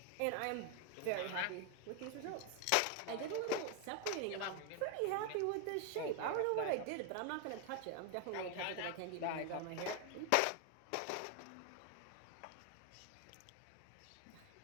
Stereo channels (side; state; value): both; different; correlation 0.00